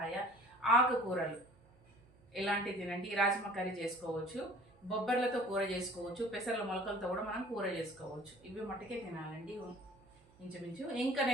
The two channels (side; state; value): right; noise; hum, 28 dB below the sound